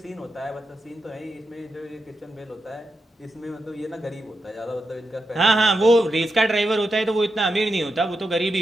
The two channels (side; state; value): both; normal; correlation 0.87